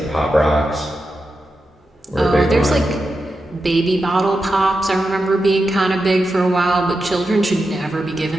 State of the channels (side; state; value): both; normal; correlation 0.89